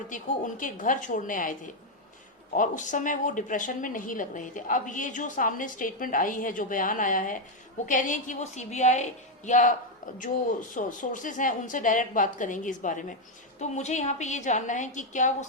को उनके घर छोड़ने आए थे और उस समय वो डिप्रेशन में नहीं लग रहे थे। अब ये जो सामने स्टेटमेंट आई है, जो बयान आया है, वो कह रही है कि वो सीबीआई या जो सोर्सेज हैं उनसे डायरेक्ट बात करेंगे इस बारे में। तो मुझे यहाँ पे ये जानना है कि क्या वो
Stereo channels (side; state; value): both; normal; correlation 0.03